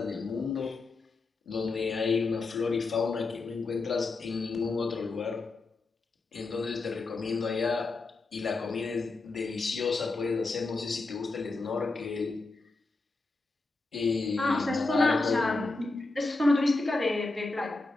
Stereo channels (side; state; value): right; quieter; 3.5 dB